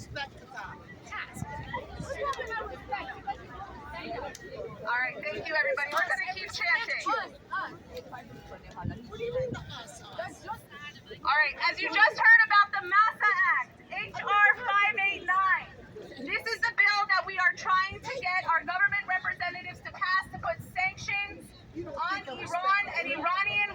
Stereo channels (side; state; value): both; identical; correlation 1.00